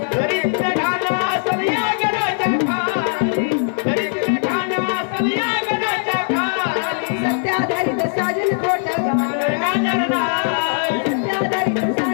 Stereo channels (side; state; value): right; silent; 58 dB below the other